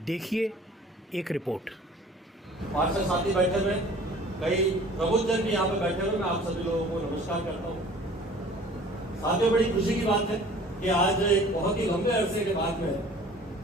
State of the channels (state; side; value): normal; both; correlation 0.49